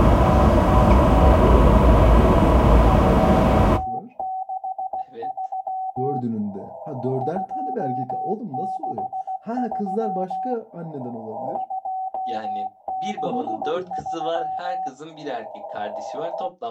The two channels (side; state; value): both; identical; correlation 1.00